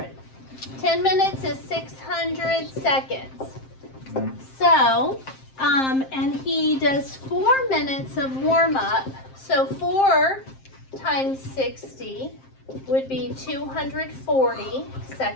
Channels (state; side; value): late; right; 7.6 ms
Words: 10 minutes is 600 seconds. So, and he does 4 minutes of warm up. So 4 times 60 would be 240